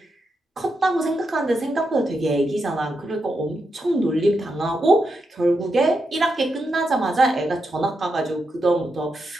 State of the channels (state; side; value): normal; both; correlation 0.85